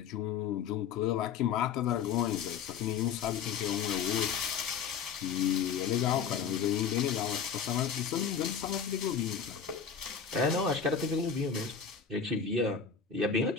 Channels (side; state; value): right; quieter; 6.8 dB